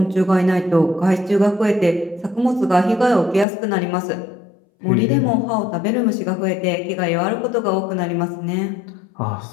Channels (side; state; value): right; drops out; at 3.5 s